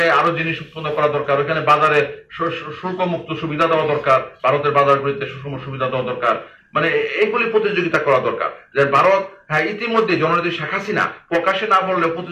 আরো জিনিস উৎপন্ন করা দরকার, ওখানে বাজারে শুল্ক মুক্ত সুবিধা দেওয়া দরকার, ভারতের বাজারগুলিতে সুষম সুবিধা দেওয়া দরকার, মানে এইগুলি প্রতিযোগিতা করা দরকার। যে ভারত হ্যাঁ ইতিমধ্যে জননেত্রী শেখ হাসিনা প্রকাশে না বললেও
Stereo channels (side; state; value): both; identical; correlation 1.00